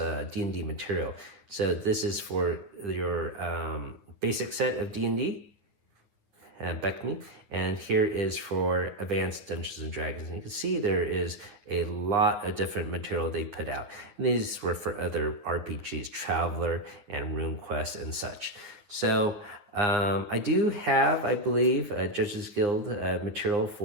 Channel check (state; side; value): late; left; 9.4 ms